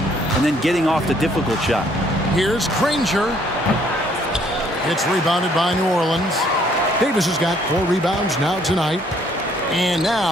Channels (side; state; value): both; normal; correlation 0.64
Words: and then getting off the difficult shot. Here's Granger. It's rebounded by New Orleans. Davis has got 4 rebounds now tonight. And